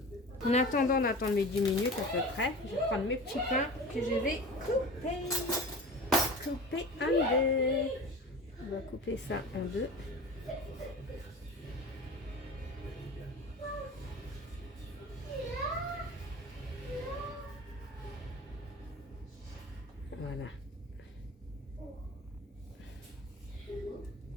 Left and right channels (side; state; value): both; normal; correlation 0.35